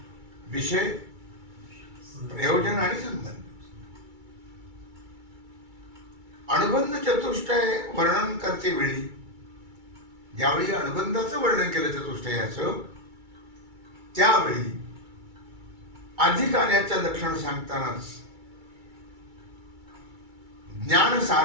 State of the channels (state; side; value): late; left; 2.3 ms